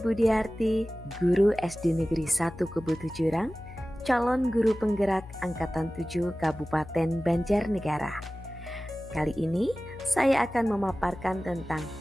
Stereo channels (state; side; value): noise; left; hum, 16 dB below the sound